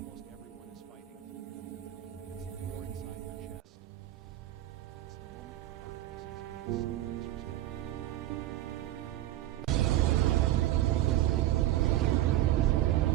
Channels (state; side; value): quieter; left; 14.2 dB